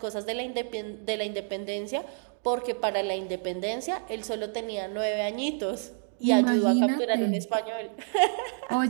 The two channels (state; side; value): silent; left; 56 dB below the other